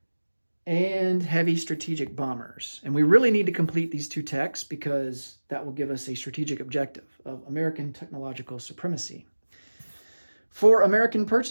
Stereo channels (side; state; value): both; inverted; correlation -1.00